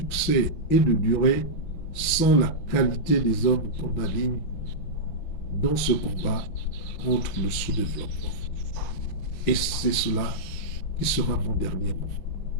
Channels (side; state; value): right; late; 6.0 ms